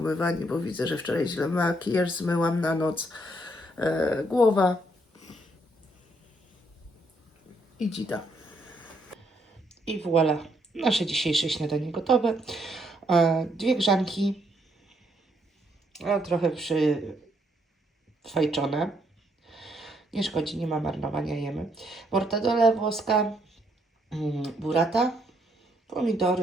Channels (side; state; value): both; normal; correlation 0.72